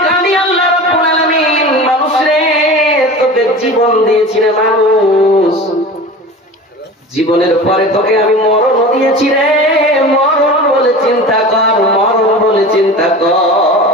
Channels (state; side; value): normal; both; correlation 0.35